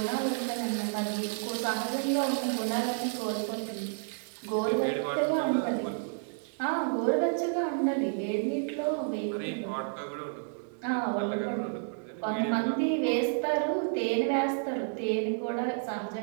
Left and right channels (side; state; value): left; silent; digital silence